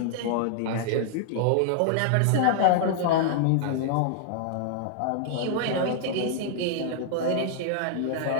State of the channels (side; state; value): both; different; correlation -0.01